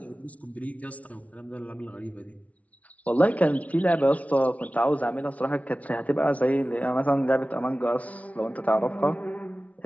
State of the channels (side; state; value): right; late; 0.067 ms